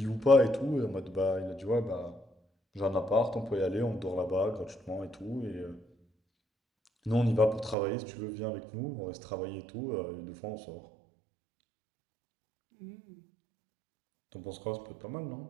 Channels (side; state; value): left; drops out; at 7.8 s